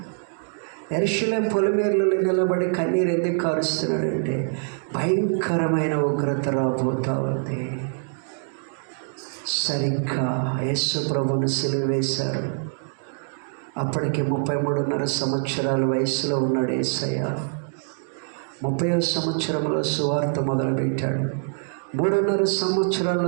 యెరూషలేము పొలిమేర్లలో నిలబడి కన్నీరు ఎందుకు కారుస్తున్నాడంటే భయంకరమైన ఉగ్రత రాబోతా ఉంది. సరిగ్గా యేసు ప్రభువును సిలువ వేశారు. అప్పటికి 33.5 సంవత్సరాల వయసులో ఉన్నాడు యేసయ్య. 30వ సంవత్సరంలో సువార్త మొదలుపెట్టాడు. 3.5 సంవత్సరాలు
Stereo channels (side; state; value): left; silent; 62 dB below the other